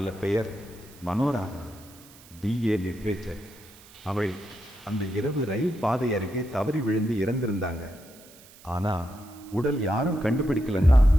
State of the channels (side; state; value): right; noise; hiss, 23 dB below the sound